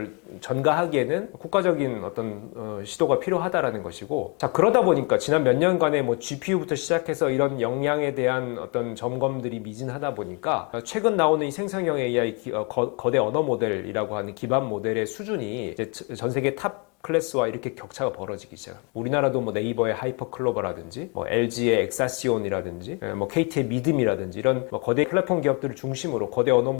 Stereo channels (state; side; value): quieter; right; 32.6 dB